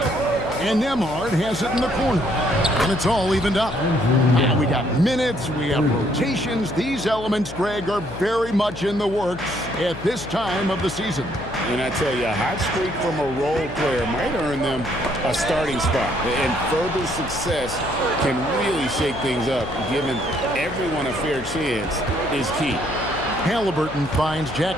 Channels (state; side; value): noise; left; hum, 12 dB below the sound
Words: And Nembhard has it in the corner. And it's all evened up. Now we got minutes, we have rotations. These elements, Greg, are very much in the works at this time of the season. And I tell you, a hot streak from a role player might earn them a starting spot. And further success can really shake things up. Giving everyone a fair chance is key. Halliburton finds